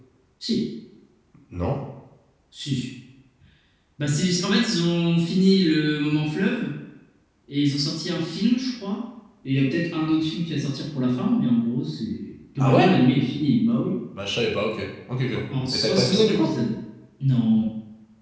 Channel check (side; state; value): both; identical; correlation 1.00